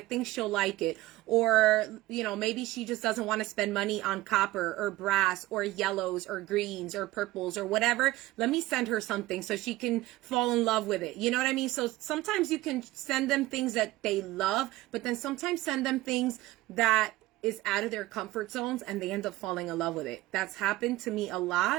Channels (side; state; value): left; quieter; 18.0 dB